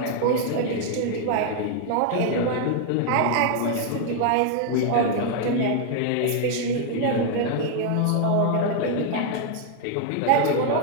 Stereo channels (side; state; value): both; different; correlation 0.00